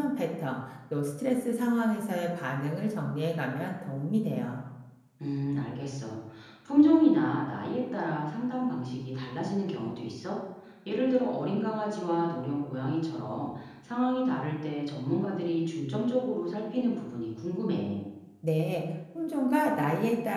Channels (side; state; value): both; identical; correlation 1.00